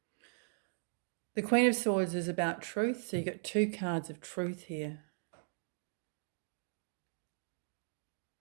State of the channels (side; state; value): left; silent; digital silence